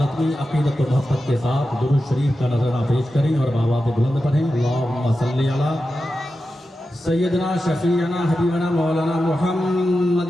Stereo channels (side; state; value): both; normal; correlation 0.91